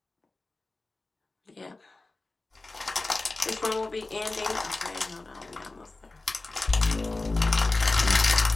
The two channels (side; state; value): right; quieter; 3.2 dB